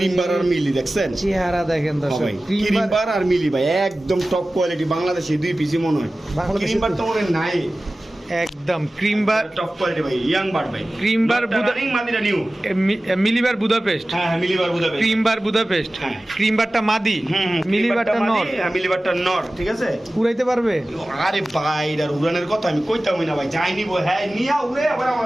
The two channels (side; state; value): both; normal; correlation 0.96